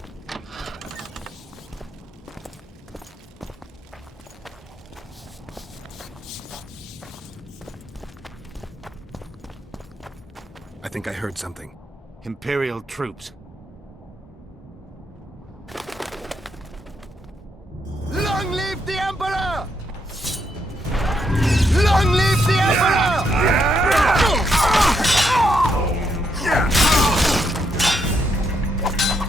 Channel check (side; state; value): both; normal; correlation 0.77